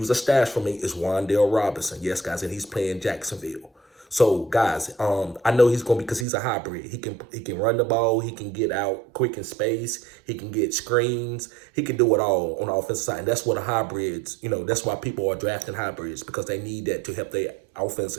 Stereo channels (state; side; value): drops out; left; at 6.2 s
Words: a stash for me, is Wandell Robinson. Yes, guys, and he's playing Jacksonville. So, guys, I know he's going to be, because he's a hybrid. He can run the ball. He can get out quick in space. He can get screens. He can do it all on the offensive side. And that's what the hybrids, that's why people are drafting hybrids, because they need that to help their offense